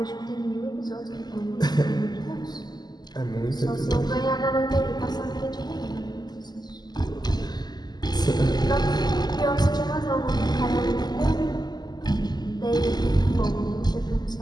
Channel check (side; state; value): right; late; 0.20 ms